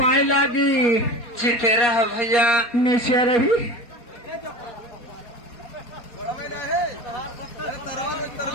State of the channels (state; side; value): late; right; 4.2 ms